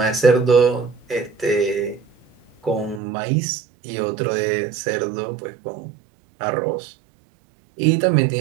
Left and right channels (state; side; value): drops out; left; at 3.0 s